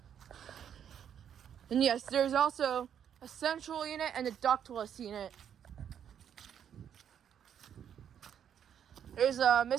And yes, there's also a central unit and a ductless unit. There's a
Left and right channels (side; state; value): left; quieter; 8.9 dB